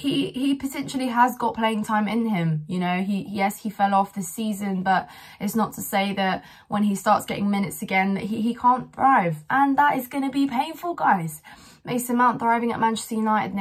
potentially has got playing time in him. You know, yes, he fell off this season, but it's not to say that when he starts getting minutes again that he can't thrive, and that is going to be painful, guys. Mason Mount thriving at Manchester United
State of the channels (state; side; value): identical; both; correlation 1.00